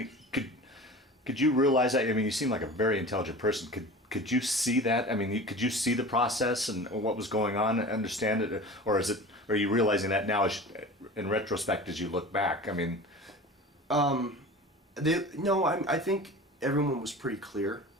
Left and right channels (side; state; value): both; normal; correlation 0.36